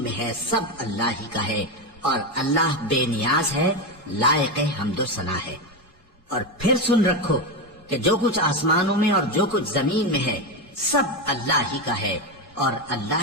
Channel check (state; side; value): normal; both; correlation 0.13